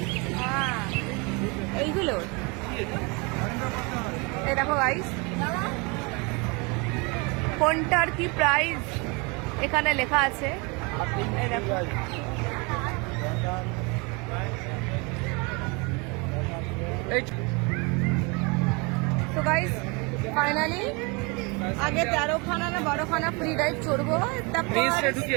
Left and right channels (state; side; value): quieter; left; 29.4 dB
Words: এইগুলো এই দেখো গাইস, কোনটার কি প্রাইস এখানে লেখা আছে। এই দেখো, তো গাইস ফাইনালি আগে 13খানা না 12খানা ফ্রি রাইড চড়বো, তারপর